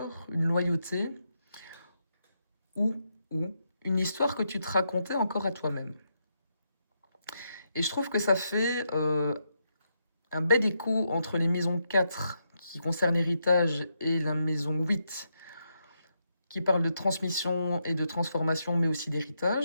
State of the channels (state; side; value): inverted; both; correlation -0.81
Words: une loyauté, ou une histoire que tu te racontais encore à toi-même. Et je trouve que ça fait un bel écho entre les maisons 4 qui concernent l'héritage et la maison 8 qui parle de transmission et de transformation, mais aussi